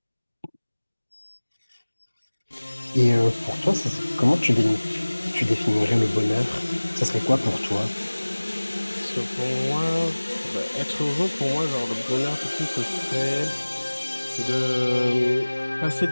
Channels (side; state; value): both; inverted; correlation -1.00